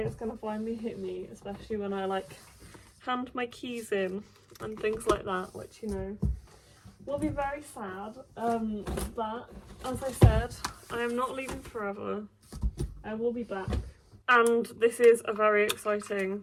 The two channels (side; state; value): both; identical; correlation 1.00